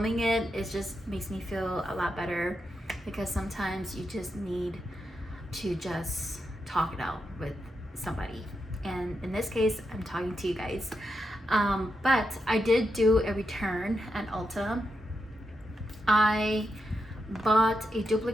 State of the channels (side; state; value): both; normal; correlation 0.85